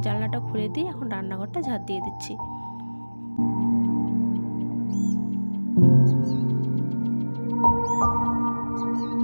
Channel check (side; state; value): both; inverted; correlation -1.00